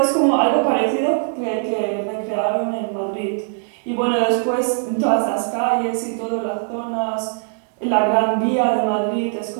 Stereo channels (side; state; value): left; silent; digital silence